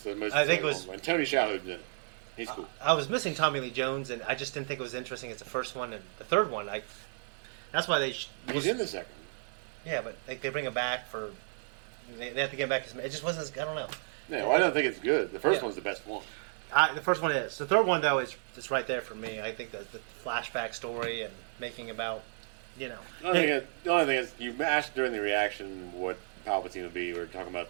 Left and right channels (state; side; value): silent; left; 56 dB below the other